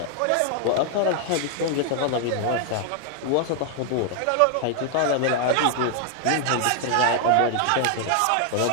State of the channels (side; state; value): both; different; correlation 0.00